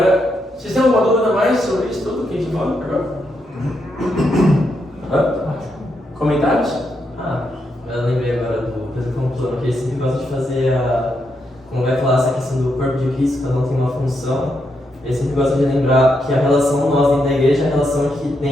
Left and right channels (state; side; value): normal; both; correlation 0.81